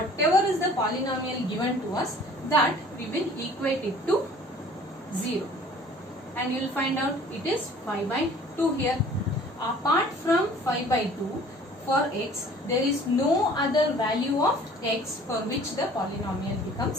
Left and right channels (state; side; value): normal; both; correlation 0.50